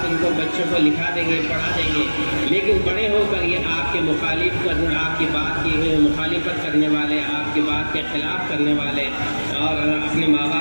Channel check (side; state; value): both; inverted; correlation -1.00